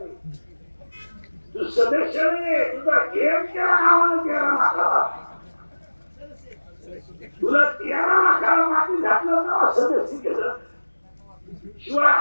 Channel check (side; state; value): both; inverted; correlation -1.00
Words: तू सदस्य नाही, तुझा गेम केला नावानं 13 लाखाला. तुला 13 लाखाला माती घातलं ना सदस्य केलं. शिवाय